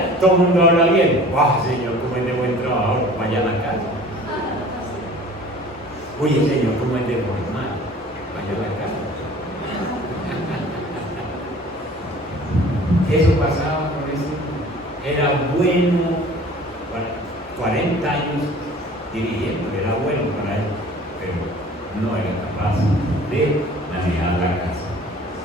todo el mundo habla bien. ¡Wow, Señor, cómo es de buen trabajador! Para allá a la casa. Oye, Señor, cómo es de formal. Para allá a la casa. Eso pasaba con eso. Era bueno, 40 años dirigiendo, era bueno para él, pero no era capaz de manejar la casa.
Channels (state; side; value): normal; both; correlation 0.47